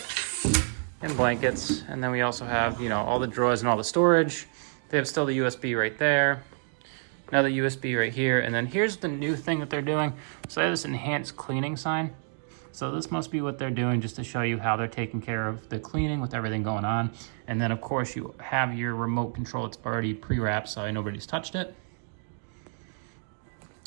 and blankets. And then we also have, you know, all the drawers and all the storage. They have still the USB right there. Another USB right here. And then here's the new thing that they're doing. So they have this enhanced cleaning sign. So this must be what they're doing just to show you how they're taking care of the cleaning with everything going on. And then, of course, you have your remote control. It's already pre-wrapped, so nobody's touched it.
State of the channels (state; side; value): silent; left; 59 dB below the other